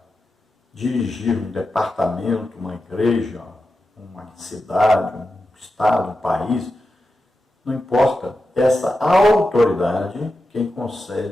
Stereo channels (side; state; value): both; normal; correlation 0.90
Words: dirigir um departamento, uma igreja, uma cidade, um estado, um país, não importa, essa autoridade quem